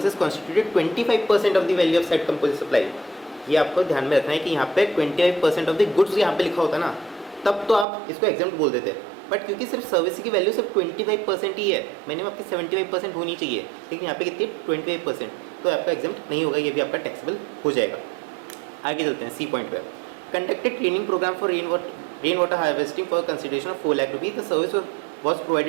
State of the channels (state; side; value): drops out; left; at 7.9 s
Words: constituted 25% of the value of set composite supply, ये आपको ध्यान में रखना है कि यहाँ पे 25% ऑफ द गुड्स यहाँ पे लिखा होता ना, तब तो आप इसको एग्जाम्प्ट बोल देते। बट क्योंकि सिर्फ सर्विस की वैल्यू सिर्फ 25% ही है, मिनिमम आपकी 75% होनी चाहिए, लेकिन यहाँ पे कितनी 25%, तो आपका एग्जाम्प्ट नहीं होगा, ये भी आपका टैक्सेबल हो जाएगा। आगे चलते हैं सी पॉइंट पे। Conducted training program for rain water harvesting for consideration of 4 lakh rupees, the service was